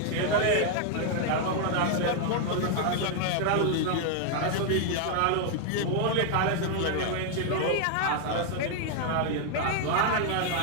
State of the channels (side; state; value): both; different; correlation 0.00